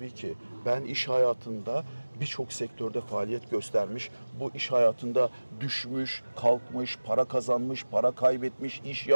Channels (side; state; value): both; inverted; correlation -1.00